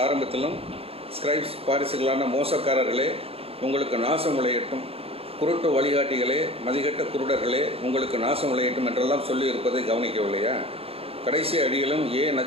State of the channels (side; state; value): left; late; 0.28 ms